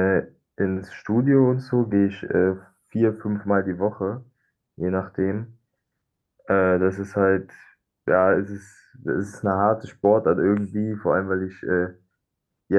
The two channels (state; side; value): identical; both; correlation 1.00